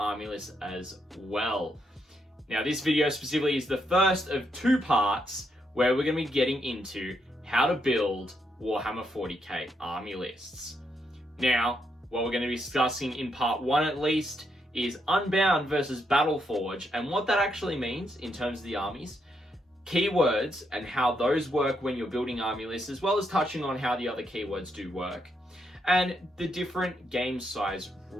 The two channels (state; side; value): normal; both; correlation 0.78